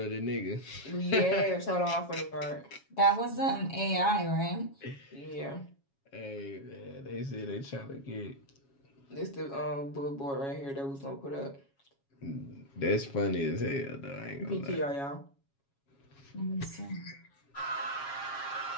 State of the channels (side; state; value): right; late; 7.3 ms